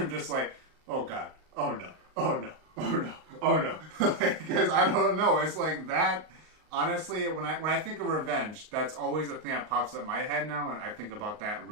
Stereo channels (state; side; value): late; left; 38 ms